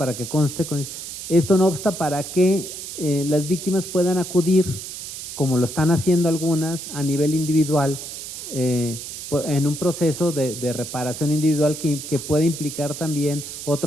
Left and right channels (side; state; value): right; noise; hiss, 9 dB below the sound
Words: que conste, esto no obsta para que las víctimas puedan acudir, como lo están haciendo algunas, a nivel individual, en un proceso de reparación individual que puede implicar también